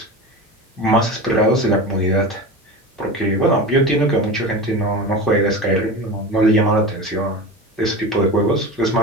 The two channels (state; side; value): normal; both; correlation 0.28